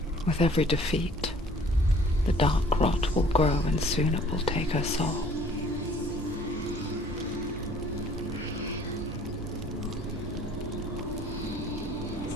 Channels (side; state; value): both; normal; correlation 0.54